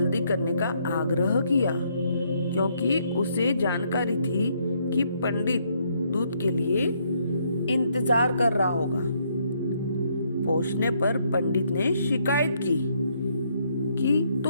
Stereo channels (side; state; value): both; inverted; correlation -0.71